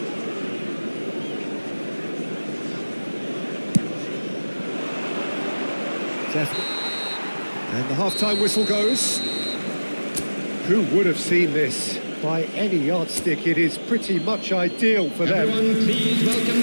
And the half-time whistle goes. Who would have seen this? By any yardstick, it is pretty much ideal for them. Everyone, please welcome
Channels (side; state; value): both; inverted; correlation -1.00